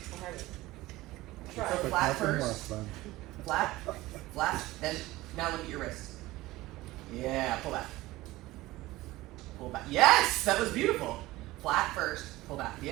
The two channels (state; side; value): quieter; left; 18.4 dB